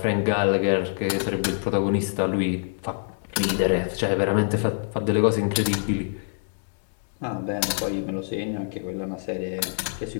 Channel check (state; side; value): silent; right; digital silence